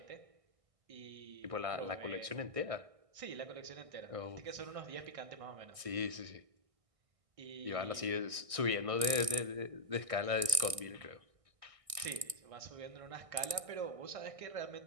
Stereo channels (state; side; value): late; left; 1.6 ms